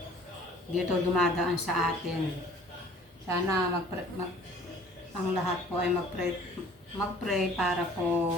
Dito dumadaan sa atin. Sana ang lahat po ay mag-pray para po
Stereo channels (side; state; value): both; normal; correlation 0.51